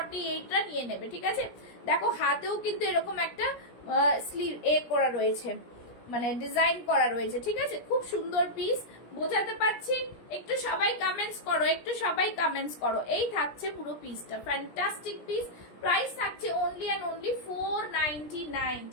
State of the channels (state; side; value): late; right; 17 ms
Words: টা নিয়ে নেবে, ঠিক আছে। দেখো হাতেও কিন্তু এরকম একটা স্লিভ করা রয়েছে, মানে ডিজাইন করা রয়েছে, ঠিক আছে, খুব সুন্দর পিস। বোঝাতে পারছি? একটু সবাই কমেন্টস করো, একটু সবাই কমেন্টস করো। এই থাকছে পুরো পিসটা, ফ্যান্টাস্টিক পিস, প্রাইস থাকছে অনলি অ্যান্ড অনলি 499,